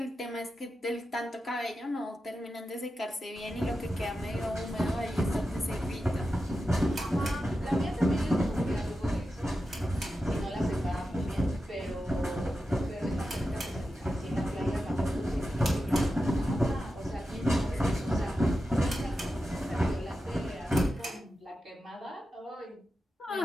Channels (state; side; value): normal; both; correlation 0.91